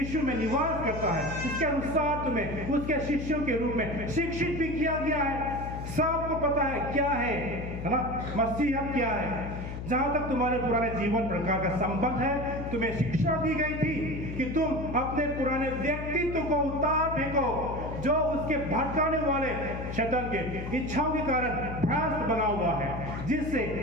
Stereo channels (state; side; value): noise; left; hum, 7 dB below the sound